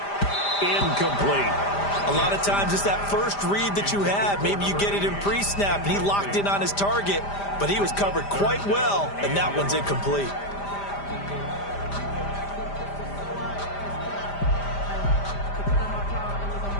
Incomplete. A lot of times it's that first read that you have. Maybe you get it in pre-snap and he locked in on his target, but he was covered quite well, and that one's incomplete.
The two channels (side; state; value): right; late; 5.0 ms